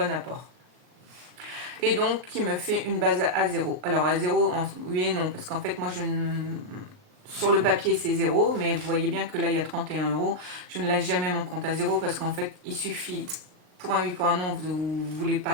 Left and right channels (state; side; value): late; left; 39 ms